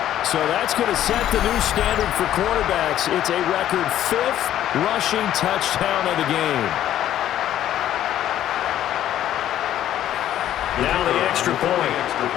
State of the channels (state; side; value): quieter; right; 11.9 dB